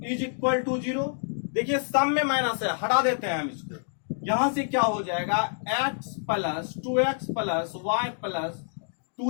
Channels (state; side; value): silent; right; digital silence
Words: is equal to 0। देखिए सम में माइनस है, हटा देते हैं हम इसको। यहां से क्या हो जाएगा, x plus 2x plus y plus